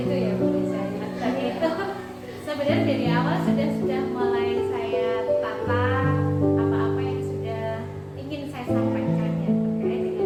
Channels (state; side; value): identical; both; correlation 1.00